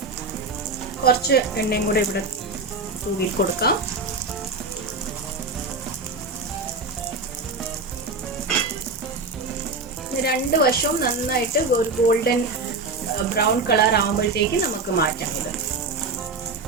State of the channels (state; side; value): quieter; left; 3.6 dB